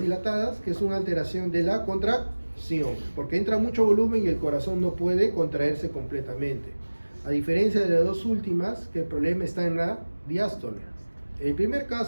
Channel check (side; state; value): both; inverted; correlation -1.00